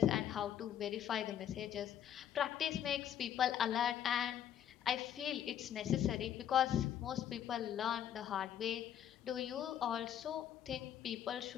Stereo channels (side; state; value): right; quieter; 10.0 dB